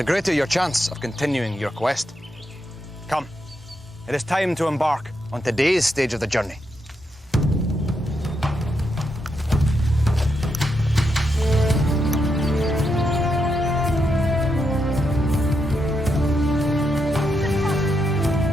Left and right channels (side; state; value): both; normal; correlation 0.82